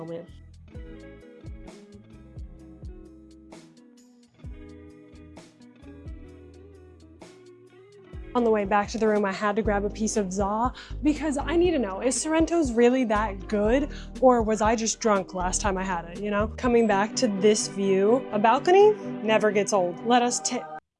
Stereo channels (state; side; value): identical; both; correlation 1.00